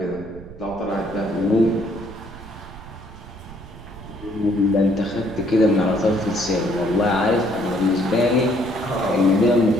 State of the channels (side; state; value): right; noise; rumble, 17 dB below the sound